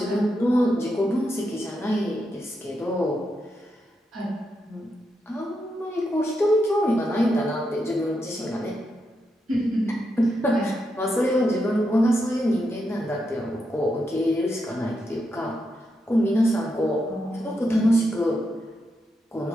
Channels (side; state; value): both; normal; correlation 0.84